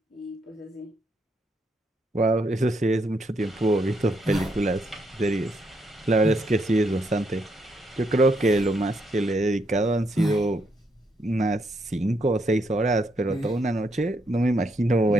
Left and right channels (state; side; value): normal; both; correlation 0.76